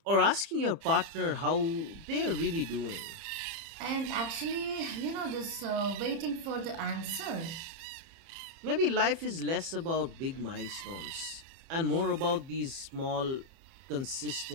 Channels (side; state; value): left; late; 30 ms